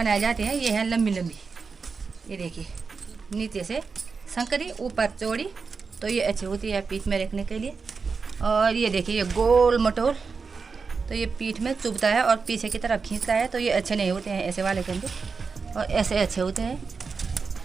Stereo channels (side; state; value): left; quieter; 4.9 dB